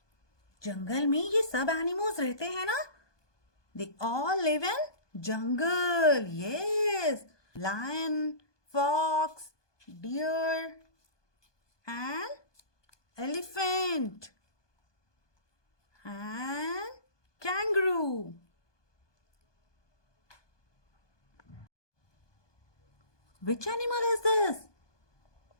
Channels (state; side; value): late; right; 1.2 ms